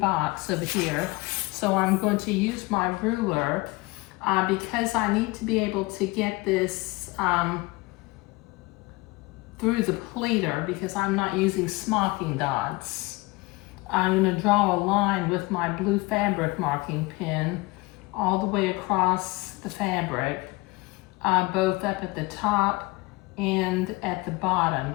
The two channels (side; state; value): right; quieter; 23.2 dB